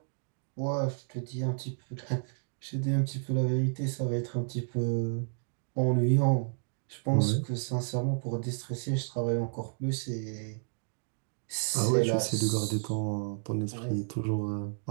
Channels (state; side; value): silent; left; digital silence